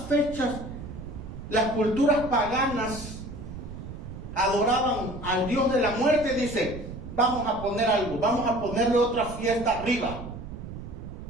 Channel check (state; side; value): noise; right; rumble, 10 dB below the sound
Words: fechas las culturas paganas adoraban al Dios de la muerte, dice, vamos a poner algo, vamos a ponerle otra fiesta arriba.